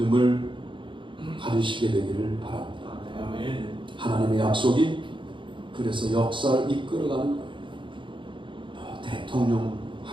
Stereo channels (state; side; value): late; left; 0.24 ms